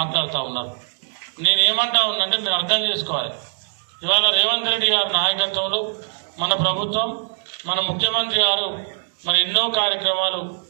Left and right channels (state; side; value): silent; left; 64 dB below the other